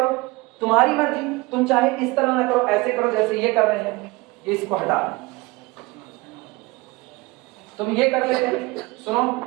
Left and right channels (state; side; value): quieter; left; 23.1 dB